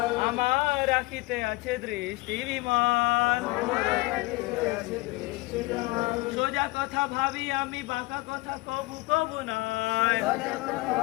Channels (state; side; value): quieter; right; 22.3 dB